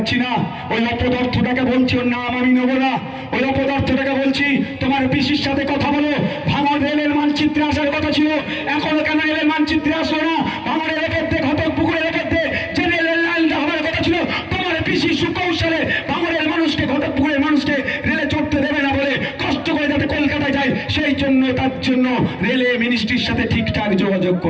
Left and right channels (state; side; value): identical; both; correlation 1.00